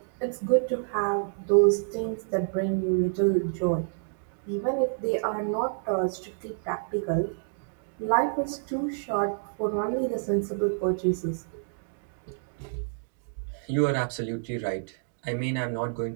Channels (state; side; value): silent; left; digital silence